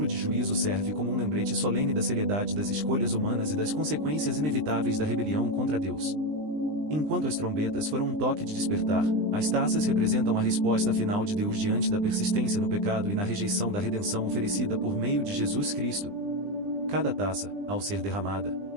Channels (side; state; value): left; late; 20 ms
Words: de juízo serve como um lembrete solene da seriedade das escolhas humanas e das consequências inevitáveis da rebelião contra Deus. Enquanto as trombetas foram um toque de despertar, as taças representam a resposta final de Deus diante da persistência no pecado e na rejeição da redenção oferecida por meio de Jesus Cristo. Cada taça, ao ser derramada,